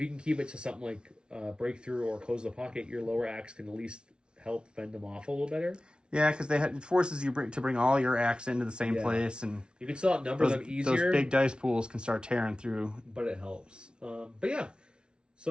you can keep it to something like breakthrough or close the pocket, your lower acts can at least help fend them off a little better. Yeah, because it forces you to bring all your acts into the same place, and you can still outnumber them easier. Those big dice pools can start tearing through. But it helps. But yeah,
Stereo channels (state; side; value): late; left; 0.056 ms